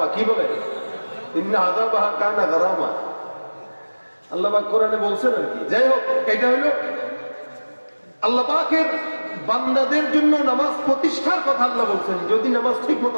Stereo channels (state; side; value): inverted; both; correlation -1.00